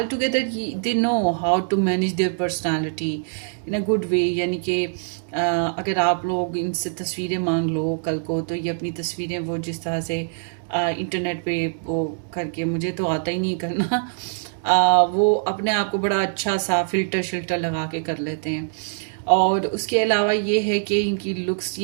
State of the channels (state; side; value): silent; left; digital silence